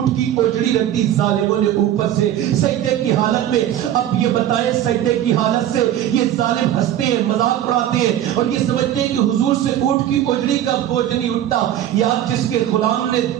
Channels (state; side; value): quieter; left; 11.6 dB